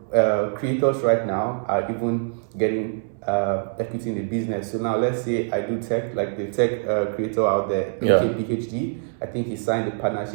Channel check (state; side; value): silent; left; 63 dB below the other